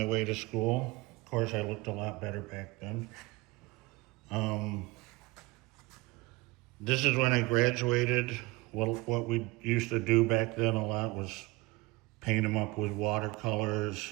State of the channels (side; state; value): left; quieter; 22.5 dB